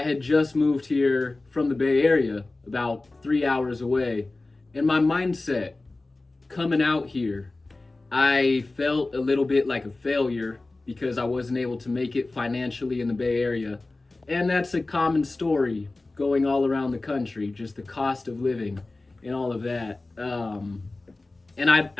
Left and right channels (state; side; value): quieter; right; 3.2 dB